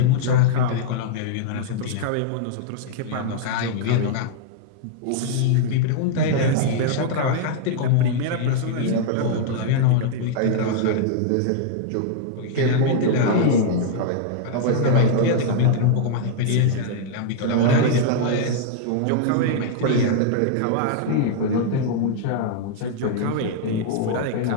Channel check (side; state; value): both; different; correlation -0.01